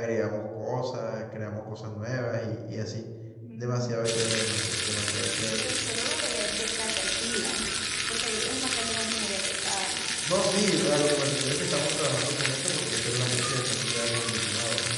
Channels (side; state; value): both; identical; correlation 1.00